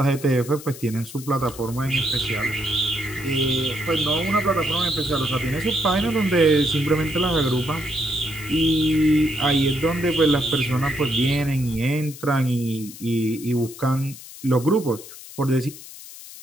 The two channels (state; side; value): noise; left; hiss, 15 dB below the sound